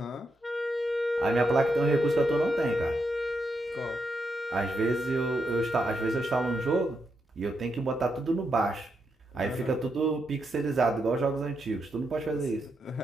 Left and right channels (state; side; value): normal; both; correlation 0.82